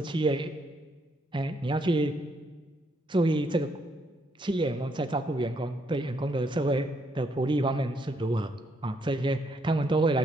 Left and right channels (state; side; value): normal; both; correlation 0.73